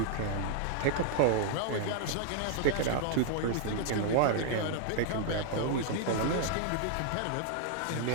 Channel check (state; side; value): different; both; correlation 0.00